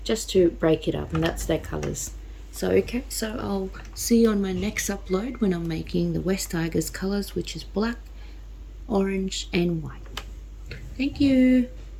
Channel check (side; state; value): both; identical; correlation 1.00